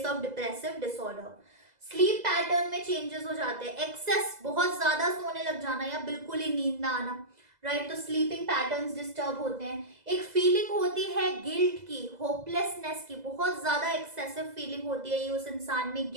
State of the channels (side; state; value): left; late; 2.0 ms